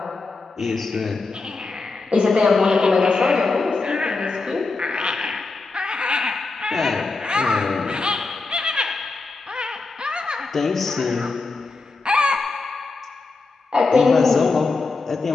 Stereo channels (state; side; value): quieter; right; 3.8 dB